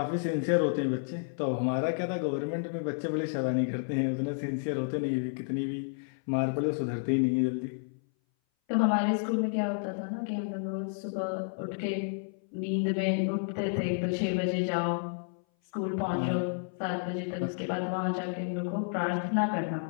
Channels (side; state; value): right; silent; 57 dB below the other